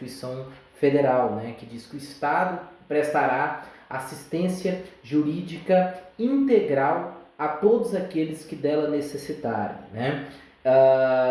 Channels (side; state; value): both; identical; correlation 1.00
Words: Federal, que diz que o Estado prestará assistência jurídica integral a todos aqueles que dela necessitarem.